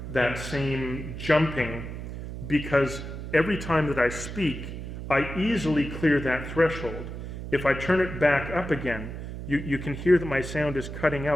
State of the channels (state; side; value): noise; right; hum, 8 dB below the sound